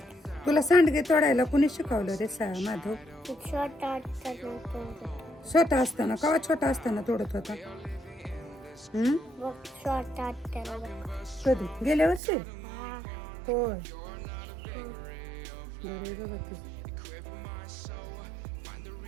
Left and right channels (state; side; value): drops out; left; at 12.2 s